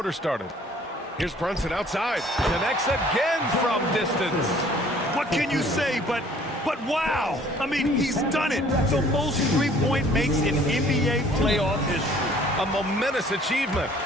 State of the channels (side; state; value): both; normal; correlation 0.55